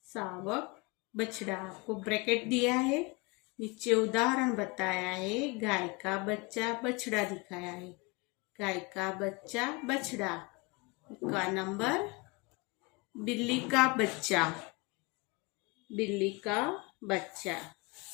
सावक, बछड़ा। आपको ब्रैकेट दिया है, नीचे उदाहरण बताया है। गाय का बच्चा बछड़ा दिखाया है। गाय का बच्चा बछड़ा का नंबर। बिल्ली का बच्चा, बिल्ली का बच्चा,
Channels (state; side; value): quieter; right; 27.2 dB